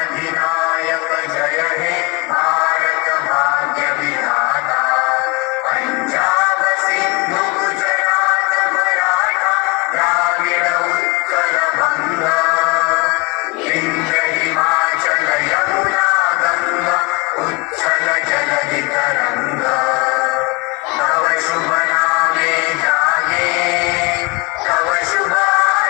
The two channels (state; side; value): quieter; right; 26.6 dB